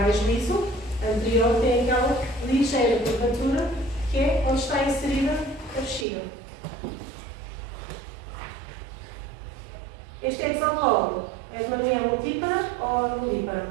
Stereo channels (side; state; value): left; drops out; at 6.1 s